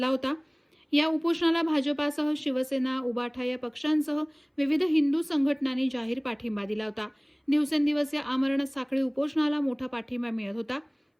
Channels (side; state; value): both; identical; correlation 1.00